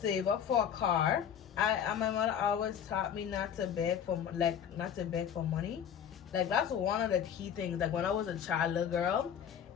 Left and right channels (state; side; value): quieter; right; 8.6 dB